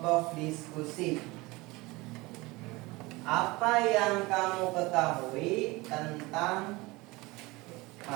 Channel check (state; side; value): quieter; left; 22.6 dB